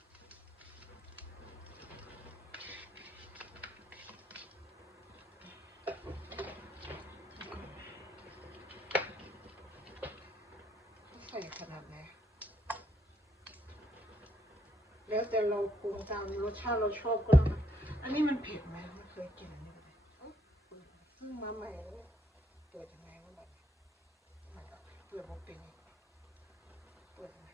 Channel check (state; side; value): normal; both; correlation 0.72